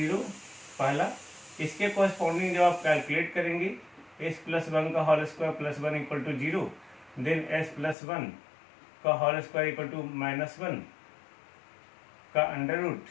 पहला, इसके कोरिस्पॉन्डिंग जब आप कैलकुलेट करेंगे एस प्लस वन का whole square plus one equal to zero, then S plus one का whole square equal to minus one का under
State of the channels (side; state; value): right; drops out; at 8.0 s